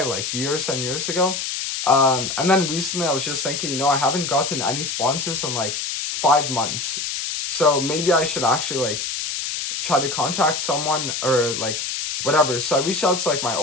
like years and years ago. And then recently I was just thinking, I haven't gotten any sponsors in like 5 months. So maybe I should actually like try to contact someone or like whatever. So I reached out to like my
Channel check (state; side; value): noise; left; hiss, 3 dB below the sound